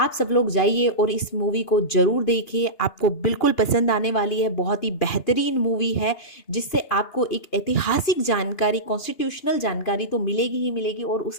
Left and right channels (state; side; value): late; right; 2.9 ms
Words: सब लोग जाइए और इस मूवी को ज़रूर देखिए, आपको बिल्कुल पसंद आने वाली है। बहुत ही बेहतरीन मूवी है जिससे आपको एक ऐतिहासिक जानकारी, कॉन्स्टिट्यूशनल जानकारी तो मिलेगी ही मिलेगी और